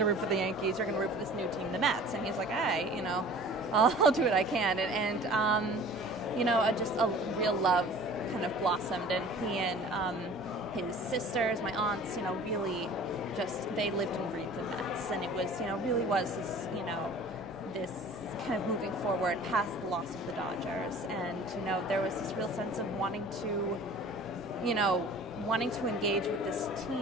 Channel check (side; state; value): both; normal; correlation 0.45